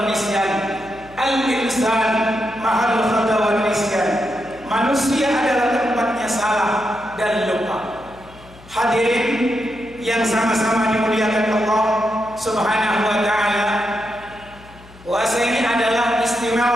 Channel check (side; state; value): left; noise; hum, 22 dB below the sound